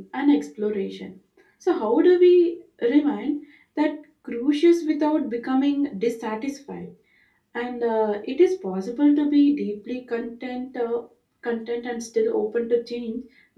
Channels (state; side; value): identical; both; correlation 1.00